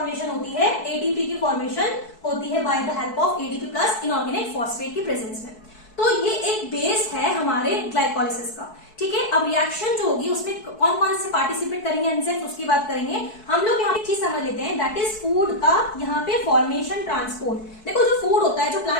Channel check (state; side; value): late; right; 4.6 ms